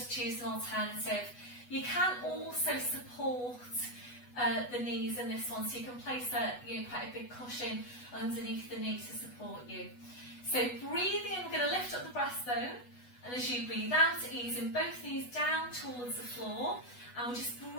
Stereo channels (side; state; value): right; late; 8.1 ms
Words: choose an alternative. You can also support the knees in this one, so you can place quite a big cushion underneath the knee to support you. So breathing in, we're going to lift up the breastbone, and as you breathe out, easing both knees down towards the floor, and we'll just